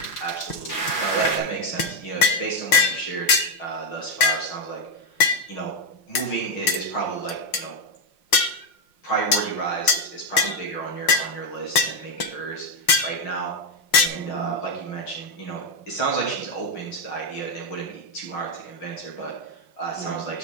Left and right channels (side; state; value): right; late; 5.6 ms